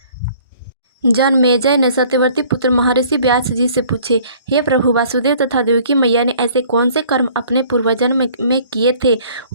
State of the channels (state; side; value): inverted; both; correlation -0.54